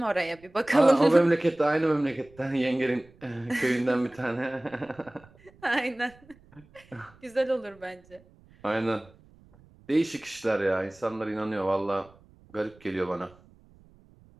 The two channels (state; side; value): noise; right; rumble, 27 dB below the sound